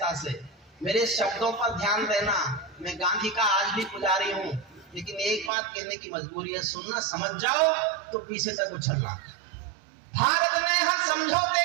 से, मेरे शब्दों पर ध्यान देना। मैं गांधी का आज भी पुजारी हूँ, लेकिन एक बात कहने की मजबूरी है, सुनना, समझ जाओ तो पीछे तक उछलना। भारत ने हर समझौते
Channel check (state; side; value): drops out; left; at 5.5 s